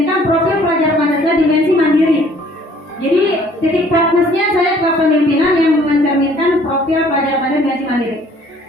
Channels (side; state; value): both; normal; correlation 0.58